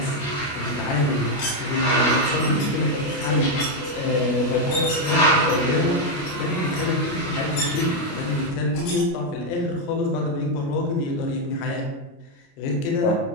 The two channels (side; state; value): right; late; 29 ms